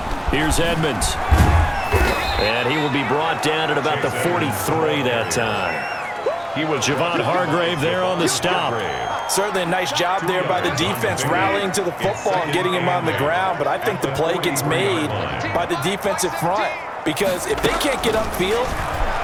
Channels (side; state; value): both; identical; correlation 1.00